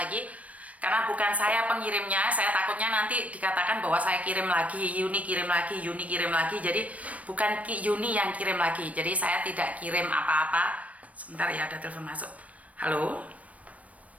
karena bukan saya pengirimnya, saya takutnya nanti dikatakan bahwa saya kirim lagi, Yuni kirim lagi, Yuni kirim lagi. Jadi bukan Yuni yang kirim lagi, jadi saya tidak kirim apa-apa. Sebentar ya, ada telepon masuk. Halo.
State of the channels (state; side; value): late; left; 0.067 ms